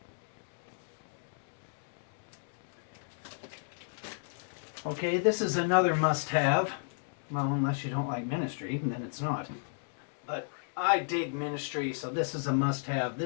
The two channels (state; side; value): silent; right; digital silence